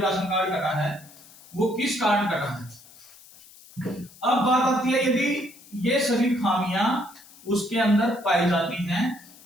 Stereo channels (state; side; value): noise; left; hiss, 23 dB below the sound